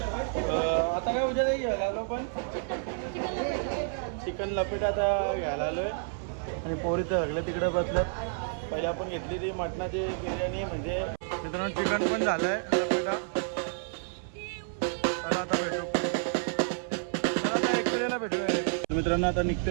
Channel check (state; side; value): silent; left; 58 dB below the other